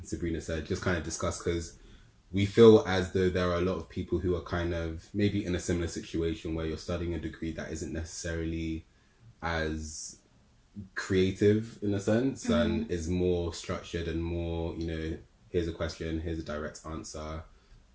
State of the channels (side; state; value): both; identical; correlation 1.00